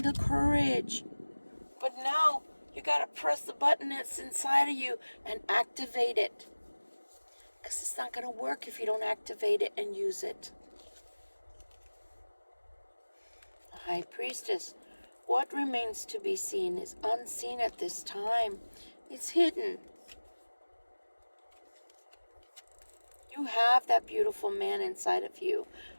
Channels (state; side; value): inverted; both; correlation -1.00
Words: courage. But now you got to press the button that's inside of you and activate it. Because it's not going to work if you don't activate it and use it. High Priestess, what remains to be seen is unseen at this time. It's hidden. You have that beautiful man inside of you.